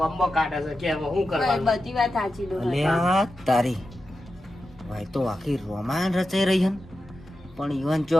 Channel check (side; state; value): both; normal; correlation 0.91